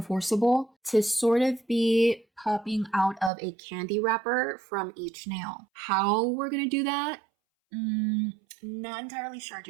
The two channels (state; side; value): drops out; left; at 3.3 s